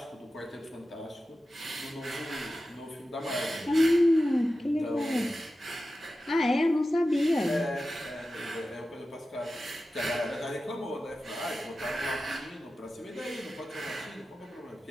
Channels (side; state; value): both; normal; correlation 0.93